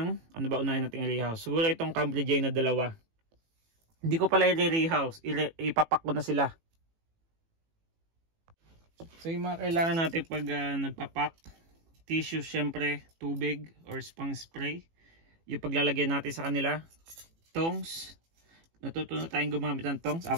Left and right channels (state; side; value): late; left; 18 ms